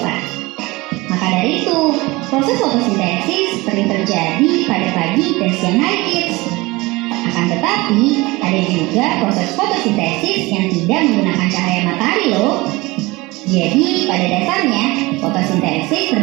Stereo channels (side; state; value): left; quieter; 22.2 dB